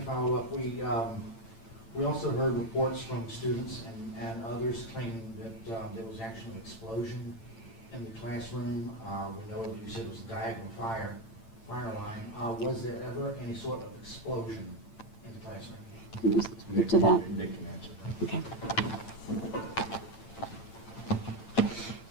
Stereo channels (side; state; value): right; late; 8.9 ms